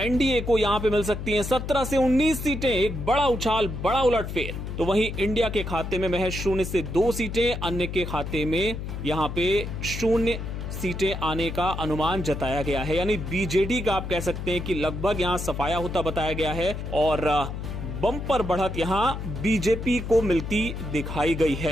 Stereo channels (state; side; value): noise; left; hum, 6 dB below the sound